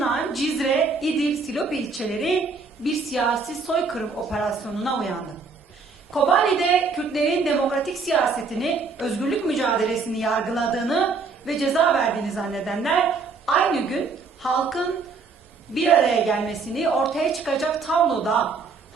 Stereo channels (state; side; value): quieter; left; 4.5 dB